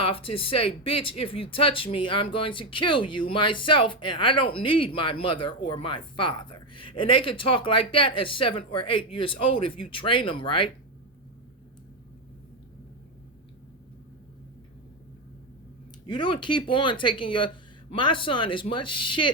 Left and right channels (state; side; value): normal; both; correlation 0.09